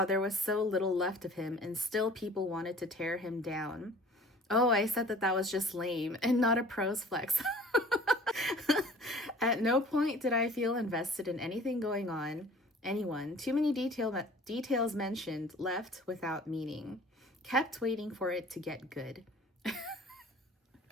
there was so little left of him and still people wanted to tear him down. Oh, I said that was just lame and not a prose flex. At no point did I feel invested in anything going on. Anyone. Too many details mentioned, left without meaning. Kept waiting for it to get good.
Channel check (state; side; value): normal; both; correlation 0.48